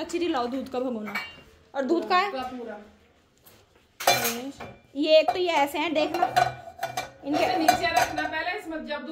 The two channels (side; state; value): both; identical; correlation 1.00